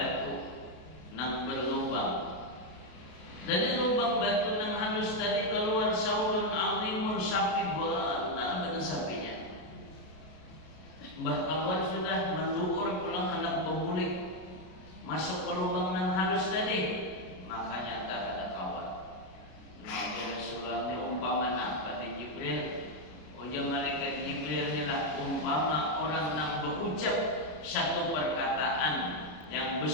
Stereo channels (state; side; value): late; right; 33 ms